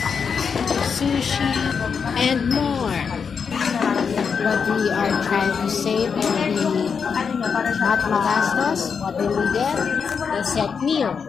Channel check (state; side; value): quieter; right; 6.1 dB